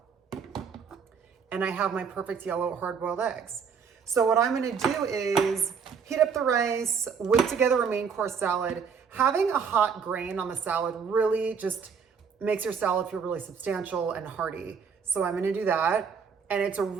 And I have my perfect yellow hard-boiled eggs. So what I'm gonna do is heat up the rice, whip together a main course salad. Having a hot grain on the salad really just makes your salad feel really substantial and hearty. So I'm gonna do that. And it's a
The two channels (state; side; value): quieter; left; 6.2 dB